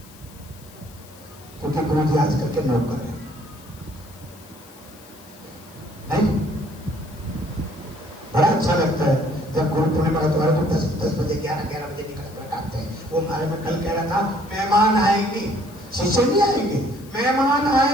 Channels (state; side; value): noise; left; hiss, 23 dB below the sound